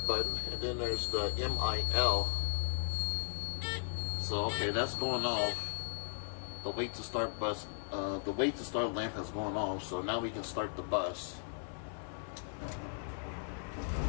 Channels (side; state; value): right; silent; 53 dB below the other